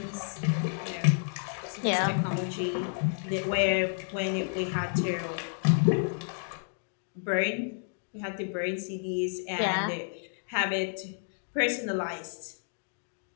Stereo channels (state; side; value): silent; right; digital silence